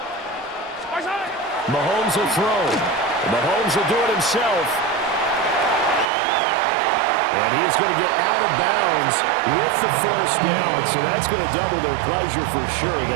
Mahomes will throw. Mahomes will do it himself. And he is going to get out of bounds with the first down. So that's going to double their pleasure for sure.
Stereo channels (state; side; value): drops out; left; at 6.1 s